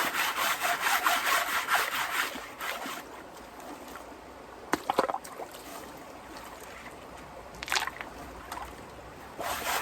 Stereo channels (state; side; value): identical; both; correlation 1.00